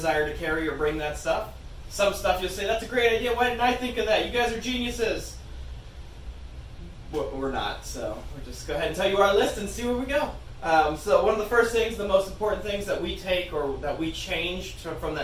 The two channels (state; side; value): identical; both; correlation 1.00